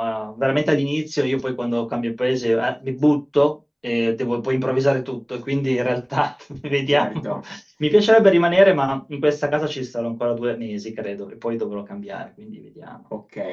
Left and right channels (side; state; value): both; identical; correlation 1.00